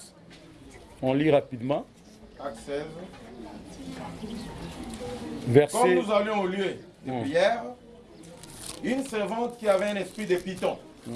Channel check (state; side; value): identical; both; correlation 1.00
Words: on lit rapidement. Actes 16. Verset... Comme nous allions au lieu de prière, une servante qui avait un esprit de python